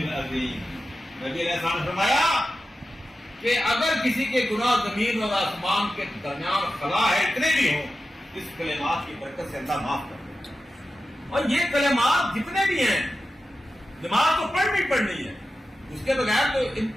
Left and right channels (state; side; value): normal; both; correlation 0.92